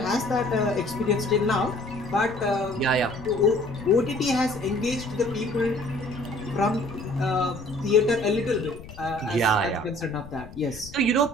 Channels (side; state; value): left; noise; rumble, 16 dB below the sound